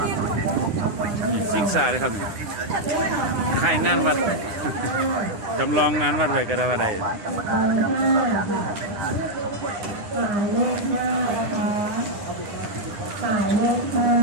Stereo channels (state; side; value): late; left; 9.7 ms